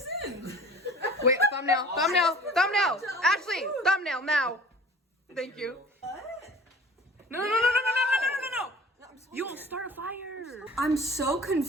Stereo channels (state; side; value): normal; both; correlation 0.46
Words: in? Wait, thumbnail. Ashley, thumbnail now. Thank you. No. You will start a fire. I'm so